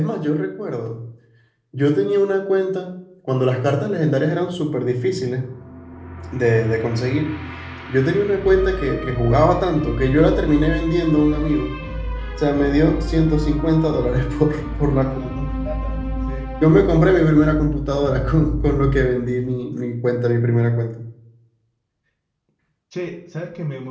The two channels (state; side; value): identical; both; correlation 1.00